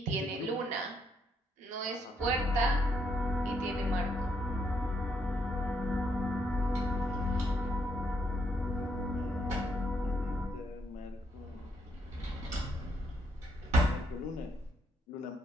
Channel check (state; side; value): normal; both; correlation 0.74